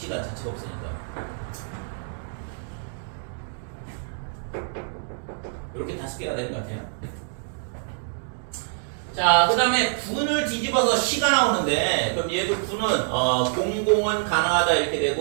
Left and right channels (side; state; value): left; silent; digital silence